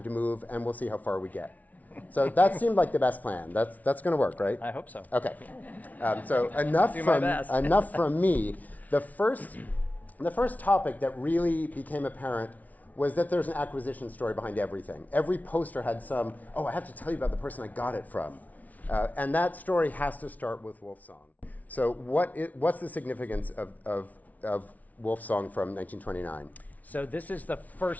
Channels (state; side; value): late; right; 0.073 ms